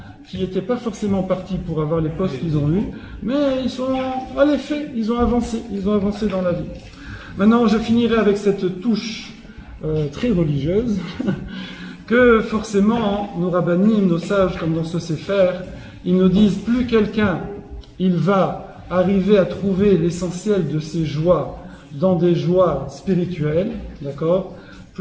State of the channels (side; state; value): both; identical; correlation 1.00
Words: qui n'étaient pas forcément partis pour avoir les postes qu'ils ont eus, mais ils ont avancé dans la vie. Maintenant, je finirai avec cette touche très religieuse, que forcément, nos rabbinim, nos sages, comme dans ce Sefer, ils nous disent, plus quelqu'un, il va arriver à trouver l'essentiel de ses joies dans des joies spirituelles, d'accord,